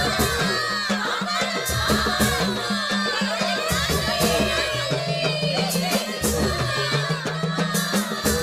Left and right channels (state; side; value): identical; both; correlation 1.00